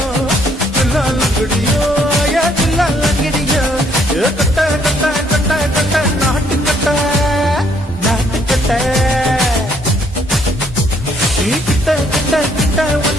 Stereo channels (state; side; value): normal; both; correlation 0.66